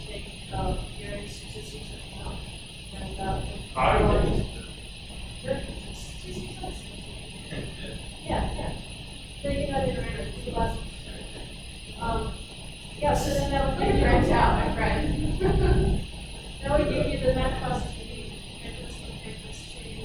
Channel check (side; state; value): both; identical; correlation 1.00